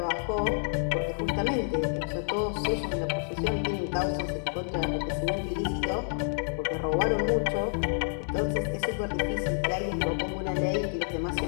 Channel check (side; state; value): right; silent; digital silence